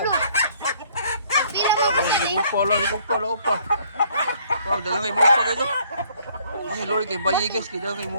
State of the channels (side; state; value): both; inverted; correlation -0.62